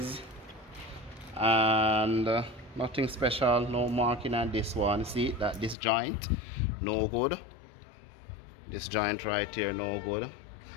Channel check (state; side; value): drops out; right; at 5.8 s